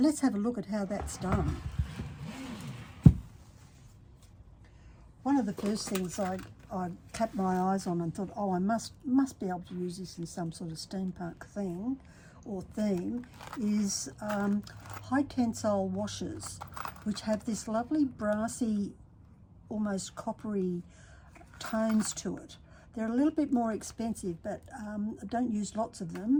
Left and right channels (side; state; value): both; identical; correlation 1.00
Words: have a look at how that's done. One of the first things I tapped my eyes on and thought, oh, I must be able to use this in some sort of steampunk thing or theme, is high tensile washers, which have this lovely brassy, almost coppery tones to it. They're a little bit more expensive, but I don't use lots of